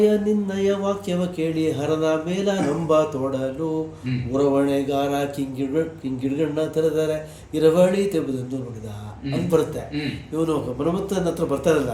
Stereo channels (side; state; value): both; identical; correlation 1.00